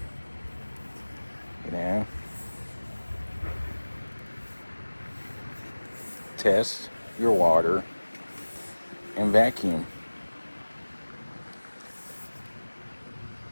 You know, test your water and vacuum.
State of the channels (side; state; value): both; inverted; correlation -1.00